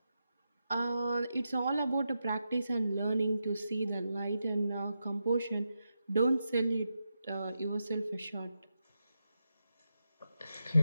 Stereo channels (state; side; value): inverted; both; correlation -0.87